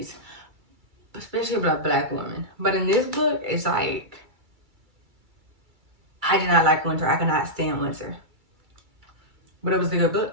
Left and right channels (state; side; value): late; left; 2.3 ms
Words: especially about black women. But in this book, it's like, I did not like winter. I could not stand winter. But it was a good